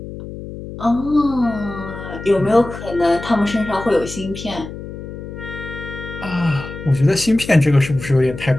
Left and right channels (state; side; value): noise; left; hum, 11 dB below the sound